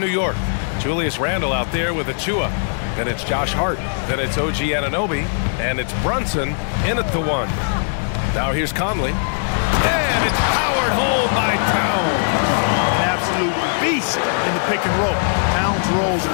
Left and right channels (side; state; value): right; silent; digital silence